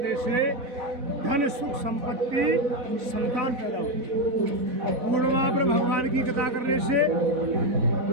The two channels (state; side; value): late; left; 4.1 ms